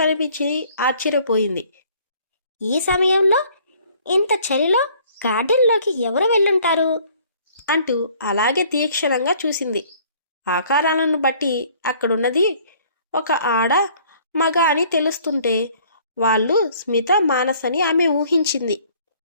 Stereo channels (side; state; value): both; inverted; correlation -0.57